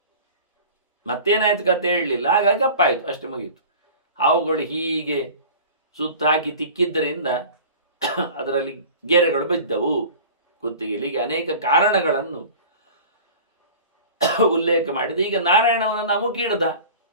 ಮತ್ತೇನಾಯ್ತು ಕತೆ ಹೇಳಲಿಲ್ಲ, ಹಾಗಾಗಿ ಕಪ್ಪಾಯಿತು, ಅಷ್ಟೇ ಮುಗಿಯಿತು. ಹಾವುಗಳು ಹೀಗೆ ಸುತ್ತಾಕಿ ತಿಕ್ಕಿದ್ದರಿಂದ ಅದರಲ್ಲಿ ಗೆರೆಗಳು ಬಿದ್ದವು ಕುತ್ತಿಗೆಯಲ್ಲಿ. ಹೀಗೆ ಅನೇಕ ಕಾರಣಗಳನ್ನು ಉಲ್ಲೇಖ ಮಾಡಿದ. ಈಗ ನಾರಾಯಣವನನ್ನು ಅಮುಕಿಡ್ದ.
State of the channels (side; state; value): both; inverted; correlation -0.39